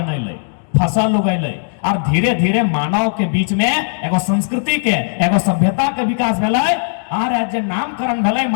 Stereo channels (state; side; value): silent; right; digital silence